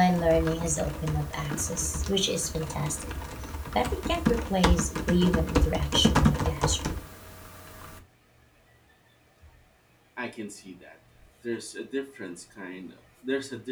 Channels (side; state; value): both; identical; correlation 1.00